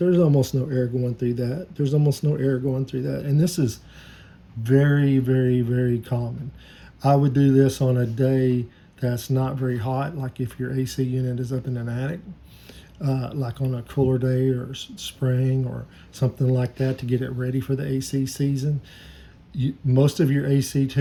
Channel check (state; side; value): identical; both; correlation 1.00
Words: almost no air going through that. There's almost no air going through that, and this is very, very, very common. I would do this on a day that's not very hot, like if your AC unit is up in an attic, like on a cooler day or spring or something like that, to get it ready for the AC season. Most of your AC